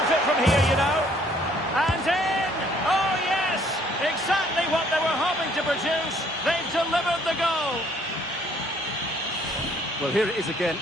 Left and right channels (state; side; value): normal; both; correlation 0.62